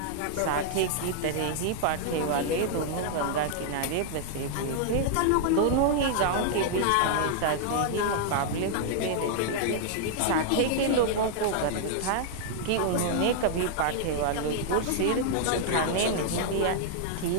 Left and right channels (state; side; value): different; both; correlation 0.00